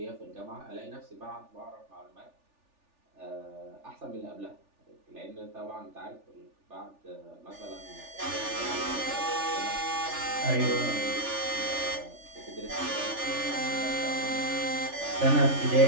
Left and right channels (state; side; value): late; left; 3.4 ms